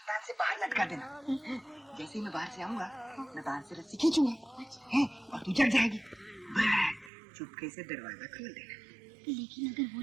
से बाहर लटका देना। जैसे ही मैं बाहर से आऊंगा, मैं बाहर से रस्सी खींचूंगा, हैं, और तू जग जाएगी। बस चुपके से दरवाजा खोल देना। लेकिन अगर वो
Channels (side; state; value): left; drops out; at 7.1 s